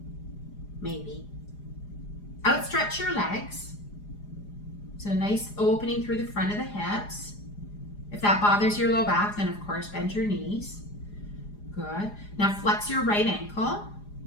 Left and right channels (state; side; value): late; right; 4.9 ms